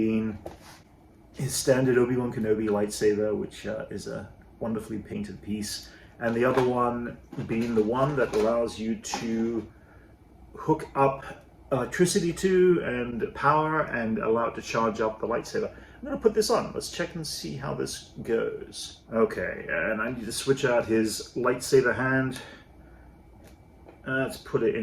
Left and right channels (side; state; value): both; identical; correlation 1.00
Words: his standard Obi Wan Kenobi lightsaber, which is a wonderfully painted piece, and the other one being the one that allows you to hook up electricity to and power and allow it to charge up the lightsaber. I'm going to put this on. Let's check and see how this goes. Okay, and I need to switch out his lightsaber hand. Let's put it